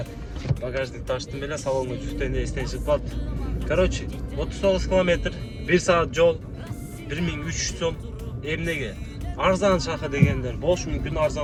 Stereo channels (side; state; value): both; identical; correlation 1.00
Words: багажник таштым эле, салонго жүктөйүндө эстен чыгып калды. Короче, 39 километр, 1 саат жол, 1300 сом. Эмнеге? Арзан шаха дегендер болушу мүмкүн,